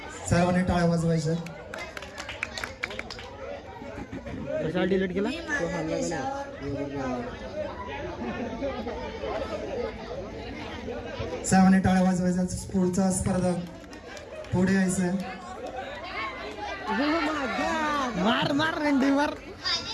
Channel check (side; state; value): both; identical; correlation 1.00